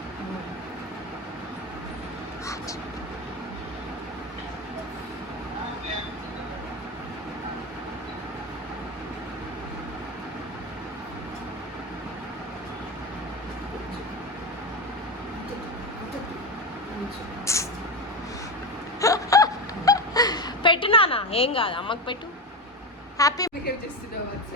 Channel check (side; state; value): both; normal; correlation 0.18